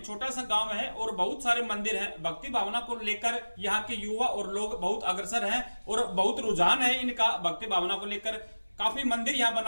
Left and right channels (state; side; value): inverted; both; correlation -1.00